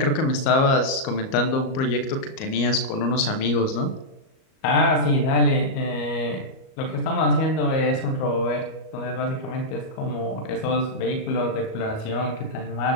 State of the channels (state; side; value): late; right; 37 ms